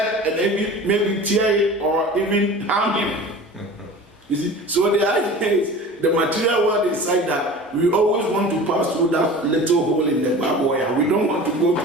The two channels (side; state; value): both; normal; correlation 0.38